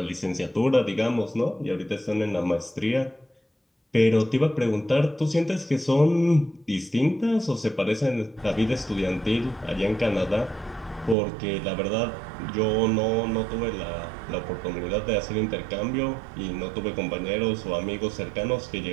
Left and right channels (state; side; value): drops out; left; at 11.2 s